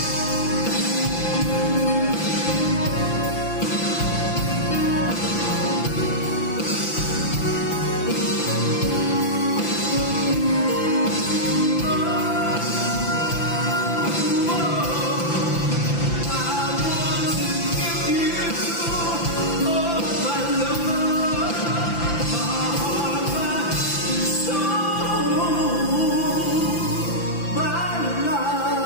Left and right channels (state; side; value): late; right; 5.9 ms